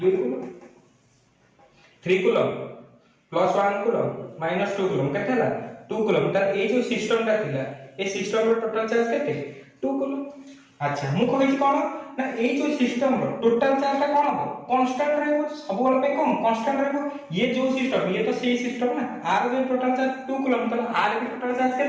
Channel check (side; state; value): both; identical; correlation 1.00